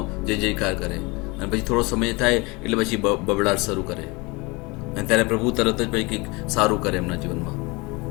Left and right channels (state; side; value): quieter; right; 25.9 dB